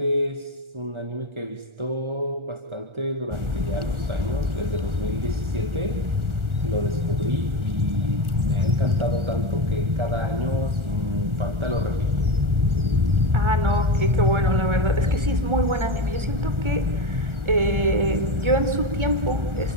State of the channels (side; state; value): left; late; 1.4 ms